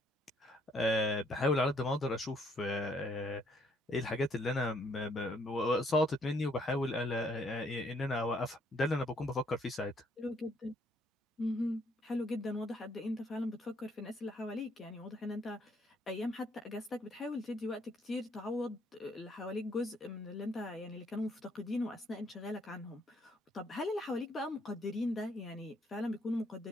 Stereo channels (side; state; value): both; normal; correlation 0.68